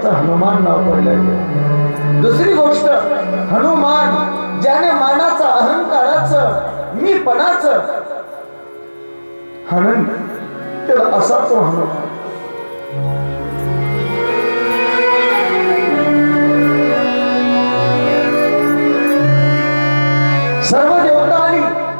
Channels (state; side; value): inverted; both; correlation -1.00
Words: हनुमान नाव पडलं. दुसरी गोष्ट, हनुमान ज्याने मानाचं अहंकाराचं मीपणाचं हनन केलं असा तो हनुमान. सर्व देवता आली,